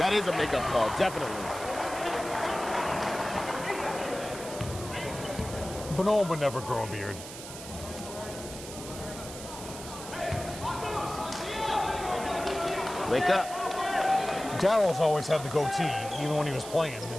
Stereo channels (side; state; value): right; noise; hiss, 12 dB below the sound